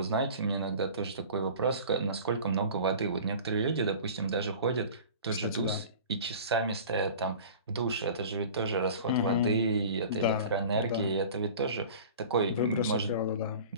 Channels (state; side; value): inverted; both; correlation -0.41